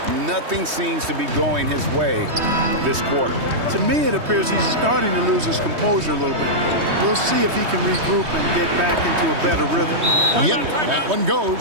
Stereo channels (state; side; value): late; left; 3.2 ms